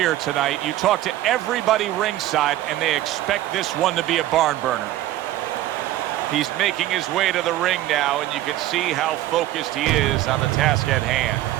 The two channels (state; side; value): quieter; left; 14.6 dB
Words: tonight. You talk to everybody ringside, and they expect this one to be a barn burner. He's making his way to the ring now, and you can see how focused he is on the task at hand.